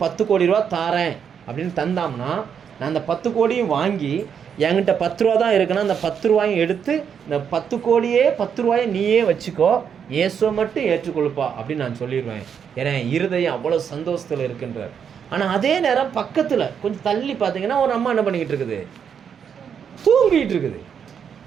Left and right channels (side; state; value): left; quieter; 7.5 dB